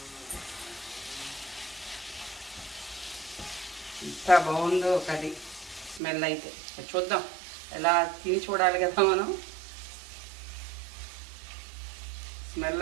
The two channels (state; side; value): drops out; left; at 6.0 s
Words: ఎంత బాగుందో కర్రీ, స్మెల్ అయితే చూద్దాం, ఎలా తిని చూడాలి కదా మనం.